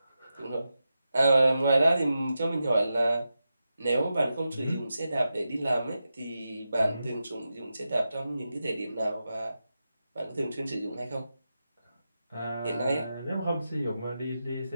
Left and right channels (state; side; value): inverted; both; correlation -0.90